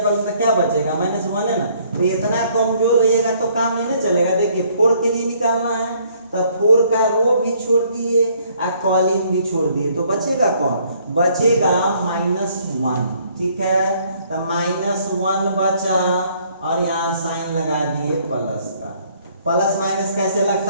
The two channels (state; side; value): inverted; both; correlation -0.64